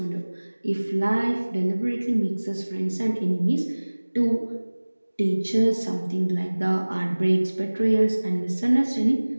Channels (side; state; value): both; inverted; correlation -1.00